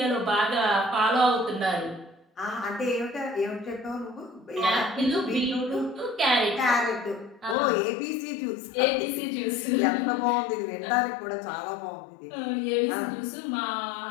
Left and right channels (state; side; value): drops out; right; at 7.6 s